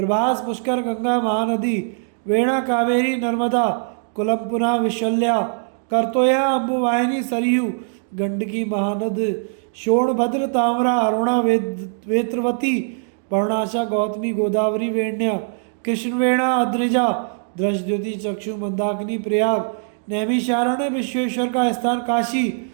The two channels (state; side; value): silent; left; digital silence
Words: पुष्कर, गंगा, महानदी, वेणा, कावेरी, नर्मदा, कुलमपुना, विशल्या, करतोया, अम्बुवाहिनी, सरयू, गंडकी, महानद, शोणभद्र, ताम्रा, अरुणा, वेत्रवती, पर्णाशा, गौतमी, गोदावरी, वेण्या, कृष्णवेणा, अद्रिजा, दृष्टद्युति, चक्षु, मंदाकिनी, प्रयाग, नैमिषारण्य, विश्वेश्वर का स्थान, काशी,